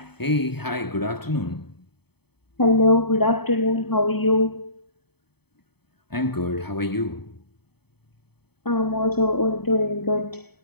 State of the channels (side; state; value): right; late; 0.97 ms